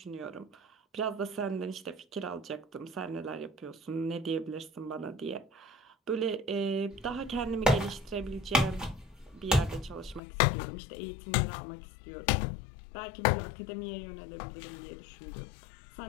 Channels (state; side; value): drops out; right; at 10.2 s